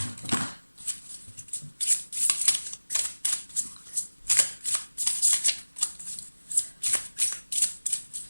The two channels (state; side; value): inverted; both; correlation -1.00